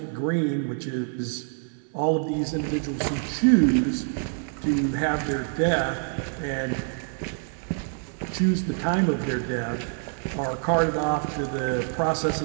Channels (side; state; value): left; silent; 58 dB below the other